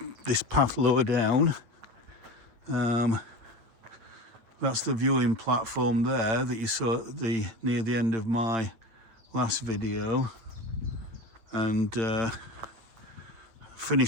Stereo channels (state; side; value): late; left; 9.4 ms